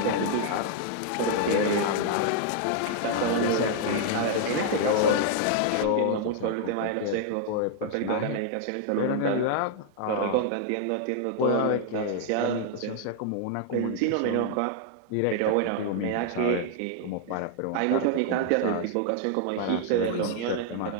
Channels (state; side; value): different; both; correlation 0.00